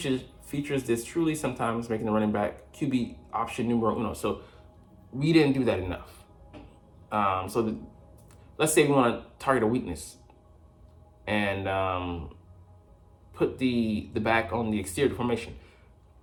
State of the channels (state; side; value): identical; both; correlation 1.00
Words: this truly sometimes making the running back QB option numero uno. So we didn't do that enough. Let's say we want to target a weakness and put the back on the exterior formation.